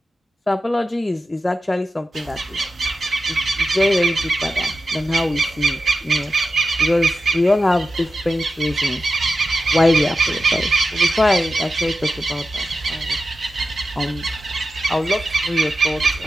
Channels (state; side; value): normal; both; correlation 0.91